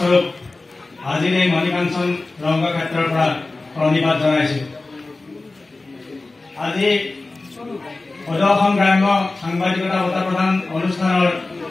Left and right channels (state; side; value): quieter; right; 3.3 dB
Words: আজিৰ এই মণিকাঞ্চন ৰংগক্ষেত্ৰৰ পৰা প্ৰণিপাত জনাইছো। আজি সদৌ অসম গ্ৰাম্য সাংবাদিকতা বঁটা প্ৰদান অনুষ্ঠানৰ